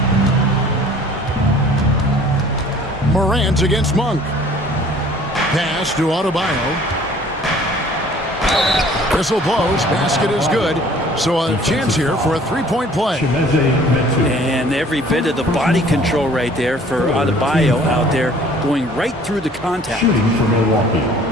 Morant against Monk. Pass to Adebayo. Whistle blows. Basket is good. So a chance here for a three-point play. And every bit of the body control right there for Adebayo out there, going right through the contact. Shooting for Milwaukee,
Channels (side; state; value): both; normal; correlation 0.52